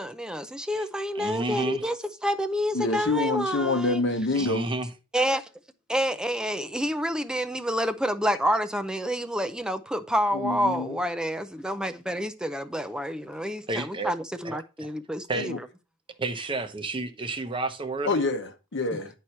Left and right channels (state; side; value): normal; both; correlation 0.59